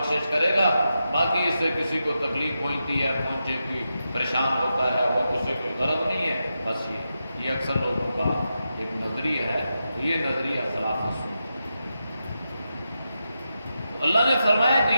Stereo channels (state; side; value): inverted; both; correlation -0.88